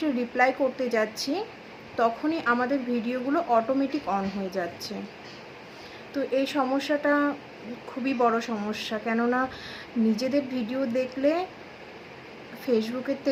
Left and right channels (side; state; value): both; identical; correlation 1.00